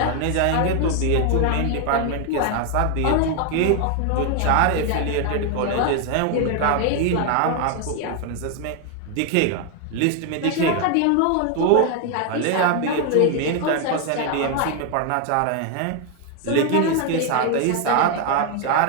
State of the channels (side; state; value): both; different; correlation 0.00